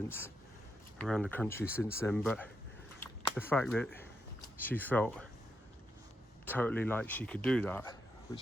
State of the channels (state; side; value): normal; both; correlation 0.82